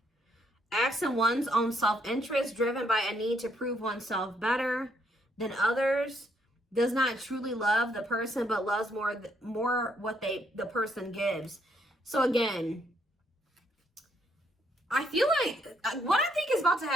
Acts in one's own self-interest, driven by a need to prove oneself better than others. Does not truly love the person, but loves more what the person gives. So again, I feel like what I think is about to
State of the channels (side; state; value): both; normal; correlation 0.72